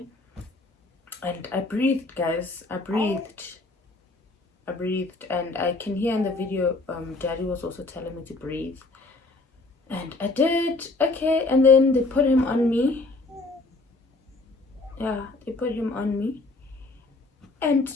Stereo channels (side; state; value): right; quieter; 3.3 dB